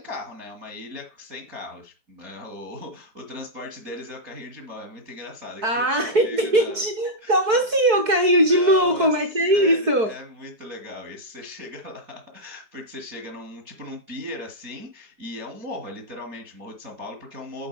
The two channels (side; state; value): left; late; 4.6 ms